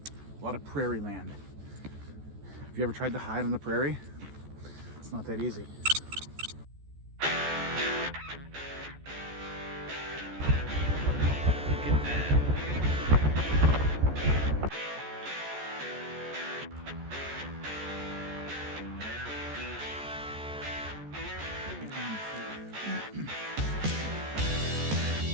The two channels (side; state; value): left; late; 14 ms